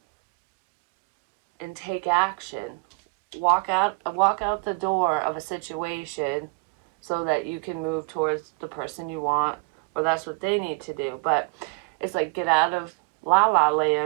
and take action. Walk out the door of a situation so that you can move towards the person you want, or that's what they need to do. But it's like get out of la la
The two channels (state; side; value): quieter; left; 32.4 dB